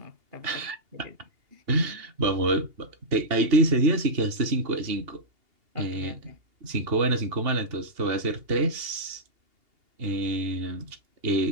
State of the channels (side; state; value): left; late; 2.8 ms